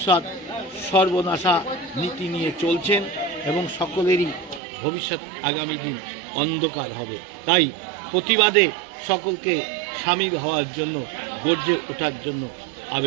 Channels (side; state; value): left; drops out; at 4.6 s